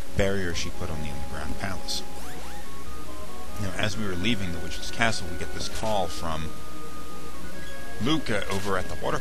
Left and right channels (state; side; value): identical; both; correlation 1.00